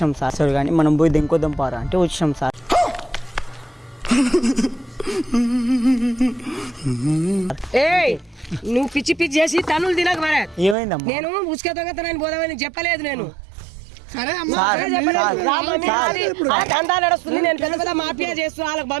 సార్ కానీ మనం పోయి దెంకొద్దాం పారా అంటే వచ్చినాం సార్ ఏయ్ నువ్వు పిచ్చి పిచ్చి చేసి తనులు తినక మరే ఏమైందమ్మా నేను ఉసుక దొంగతనాన్ని పోదామని చెప్పలేదు నేను సరే అమ్మా సార్, అదే చెప్పలేదు. సార్, రా మమ్మీ, సార్. అది ఆ దందా నడుస్తుంది నేను పెద్ద పెద్ద మాఫియా చేస్తున్నా వాళ్ళకి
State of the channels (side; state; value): left; drops out; at 10.8 s